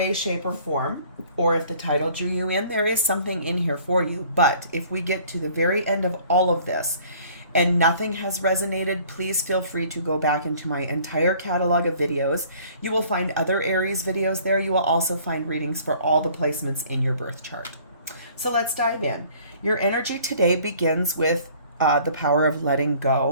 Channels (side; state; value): both; inverted; correlation -0.54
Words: shape, or form, or if the title drew you in, there is something in here for you. But if we get to the very end of all of this and nothing has resonated, please feel free to go back into my entire catalog of videos. You will find other Aries videos there. You will also find readings for all the placements in your birth chart. So let's dive in. Your energy today begins with the power of letting